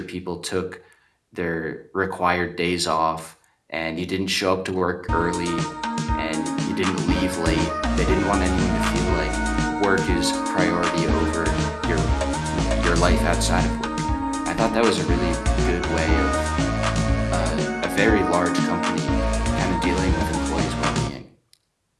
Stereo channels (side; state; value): both; identical; correlation 1.00